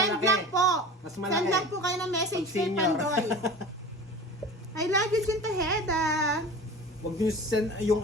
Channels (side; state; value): both; normal; correlation 0.36